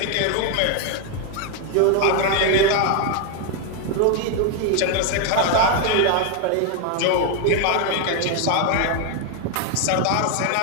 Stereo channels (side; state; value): both; different; correlation 0.01